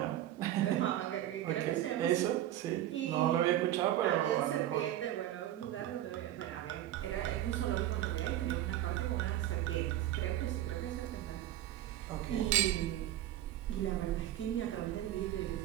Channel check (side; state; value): left; quieter; 13.2 dB